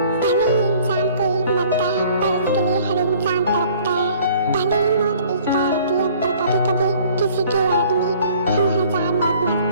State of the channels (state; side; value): inverted; both; correlation -0.54